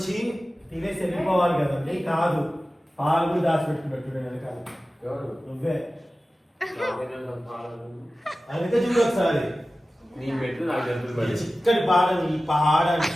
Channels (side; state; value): both; normal; correlation 0.95